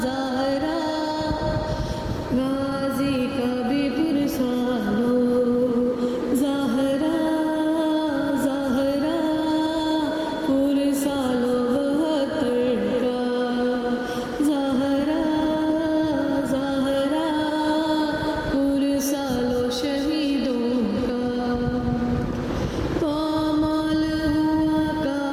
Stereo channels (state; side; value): identical; both; correlation 1.00